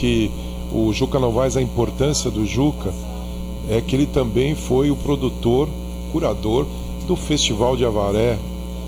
o Juca Novaes, a importância do Juca é que ele também foi o produtor, curador do Festival de Avaré,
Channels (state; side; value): identical; both; correlation 1.00